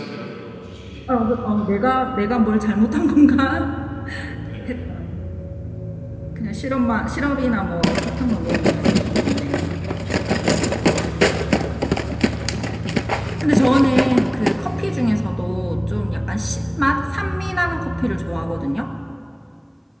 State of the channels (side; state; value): both; identical; correlation 1.00